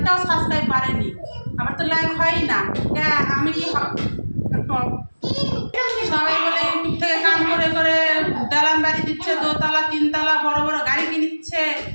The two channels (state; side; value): inverted; both; correlation -1.00